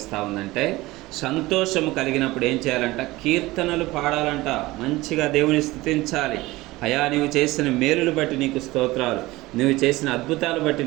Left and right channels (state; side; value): quieter; left; 19.5 dB